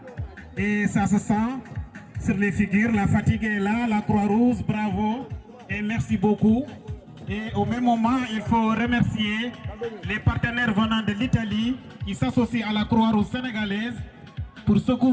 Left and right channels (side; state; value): both; identical; correlation 1.00